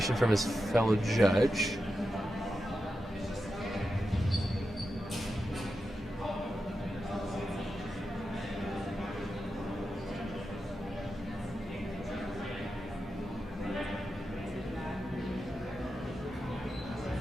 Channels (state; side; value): normal; both; correlation 0.89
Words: from his fellow judge.